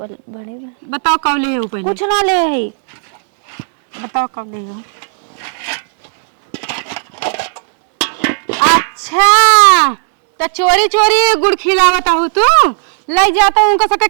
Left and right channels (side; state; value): left; silent; digital silence